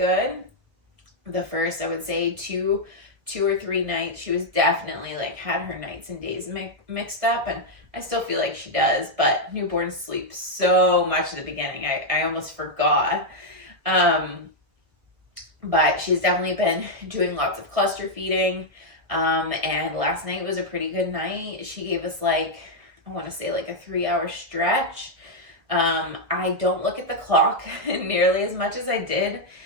The first, I would say, two or three nights, she was definitely like had her nights and days mixed up, and I still feel like she does, but newborns sleep so much at the beginning. I almost forgot. But she's definitely been doing lots of cluster feeding. And last night was a pretty good night. She gave us like, I want to say like a 3-hour stretch. I don't look at the clock nearly as much as I did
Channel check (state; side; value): late; left; 1.3 ms